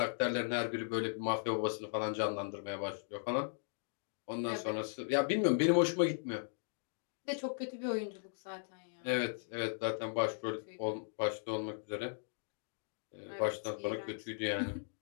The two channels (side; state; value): right; silent; digital silence